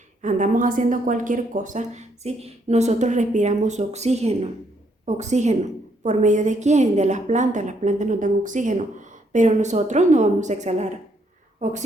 andamos haciendo cualquier cosa, ¿sí? Nosotros respiramos oxígeno. ¿Por medio de quién? De las plantas nos dan oxígeno, pero nosotros no vamos a exhalar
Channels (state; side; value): normal; both; correlation 0.72